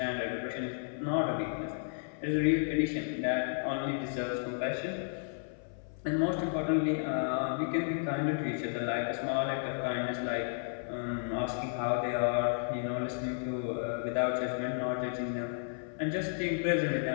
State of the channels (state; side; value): silent; right; 56 dB below the other